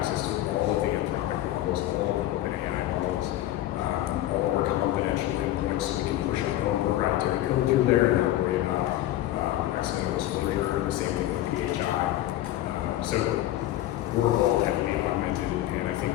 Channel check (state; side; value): quieter; right; 14.3 dB